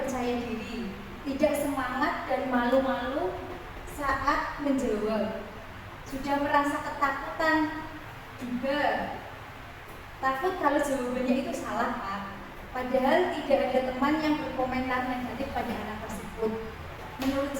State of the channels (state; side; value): identical; both; correlation 1.00